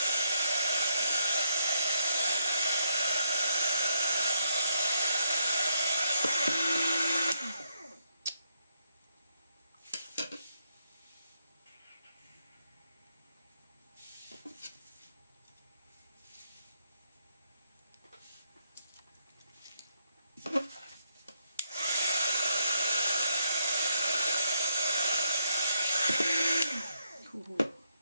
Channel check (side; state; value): both; inverted; correlation -0.75